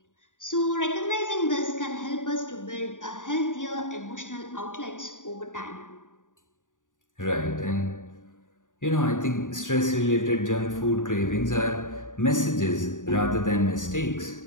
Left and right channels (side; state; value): right; late; 0.87 ms